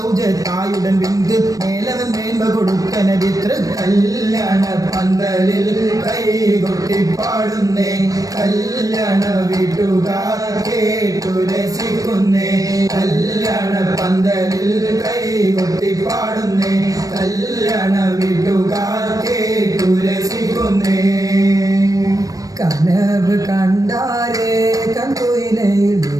വിന്ത് മേലവൻ മേന്മ കൊടുക്കന വിത്ര കല്യാണ പന്തലിൽ കൈകൊട്ടി പാടുന്നേ കല്യാണ വീട്ടുകാർ കേട്ടു രസിക്കുന്നേ കല്യാണ പന്തലിൽ കൈകൊട്ടി പാടുന്നേ കല്യാണ വീട്ടുകാർ കേട്ടു രസിക്കുന്നേ കനവ് കണ്ടാരേ കൺകുയിലയിൽ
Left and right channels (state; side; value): late; left; 0.17 ms